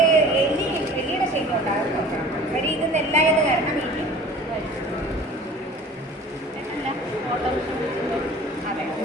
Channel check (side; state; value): both; normal; correlation 0.44